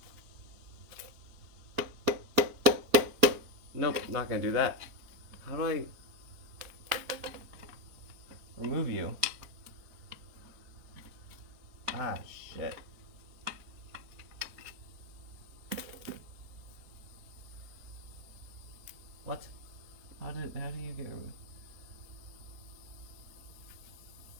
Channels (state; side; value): late; left; 4.3 ms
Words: Nope, not gonna do that. How do I remove you? Ah, shit. What? How do you get removed?